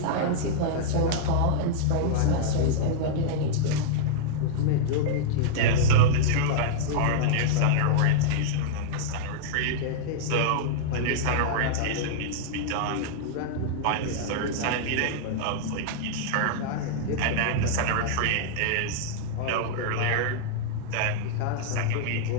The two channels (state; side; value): different; both; correlation -0.01